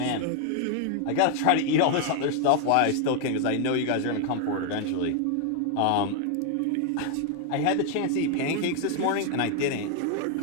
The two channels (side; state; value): both; different; correlation 0.00